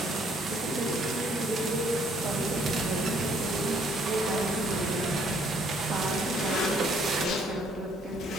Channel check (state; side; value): normal; both; correlation 0.65